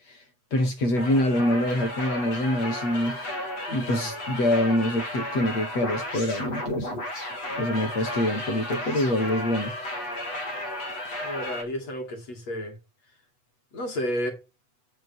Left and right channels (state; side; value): late; right; 8.1 ms